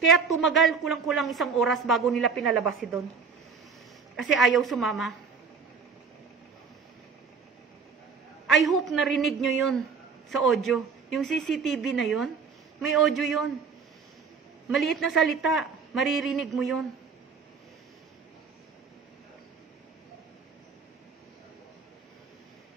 tumagal kulang-kulang 1 oras bago nila pinalabas si Don. Kasi ayaw sumama. I hope narinig nyo yun sa audio. Yung CCTV na yun, may audio yun. Maliit na salita, maririnig mo yun.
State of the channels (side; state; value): left; quieter; 5.5 dB